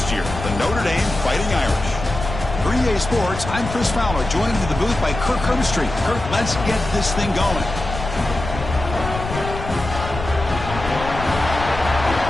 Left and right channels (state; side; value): noise; left; rumble, 8 dB below the sound